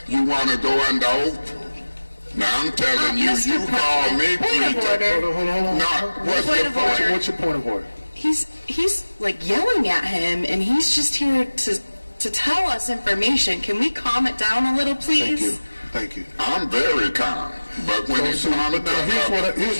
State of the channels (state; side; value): inverted; both; correlation -1.00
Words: You want to go under oath? Now I'm telling you, you call me 3 times. Hold on. No, what's your point? What's your point of order? He's like yelling at him, and he's just here to tell us information. Can we calm it down a little, please? Thank you. I'm very calm, but when it's on Here's